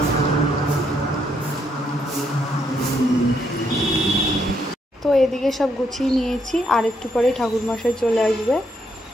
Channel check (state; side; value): normal; both; correlation 0.75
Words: তো এদিকে সব গুছিয়ে নিয়েছি আর একটু পরে ঠাকুরমশাই চলে আসবে।